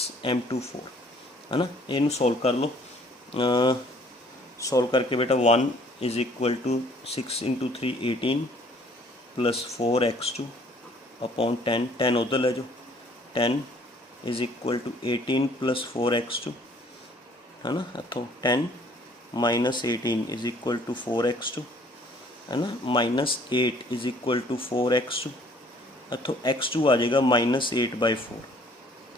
M2 4, है ना। इनू सॉल्व कर लो, सॉल्व करके बेटा 1 is equal to 6 into 3 18 plus 4 x2 upon 10, 10 उधर ले जाओ, 10 is equal to 18 plus 4 x2, है ना। इतों 10 minus 18 is equal to 4 x2, है ना, minus 8 is equal to 4 x2, इतों x2 आ जाएगा -8/4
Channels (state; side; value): normal; both; correlation 0.58